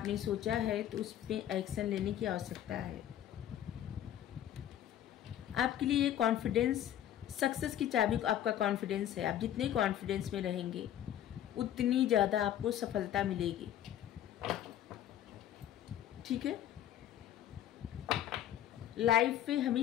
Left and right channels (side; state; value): right; quieter; 11.4 dB